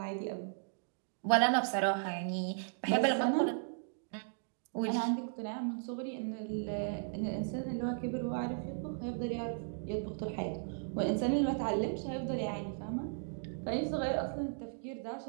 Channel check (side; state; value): left; silent; digital silence